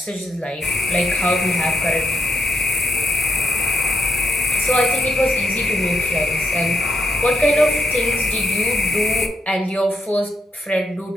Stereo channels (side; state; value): both; normal; correlation 0.78